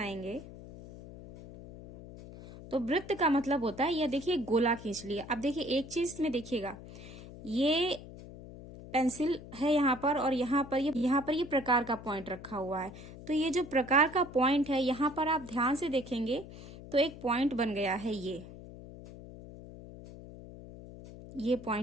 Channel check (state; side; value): noise; left; hum, 15 dB below the sound